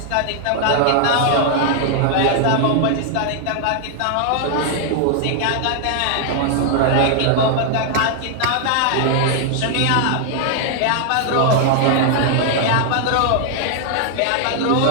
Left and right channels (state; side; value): different; both; correlation 0.00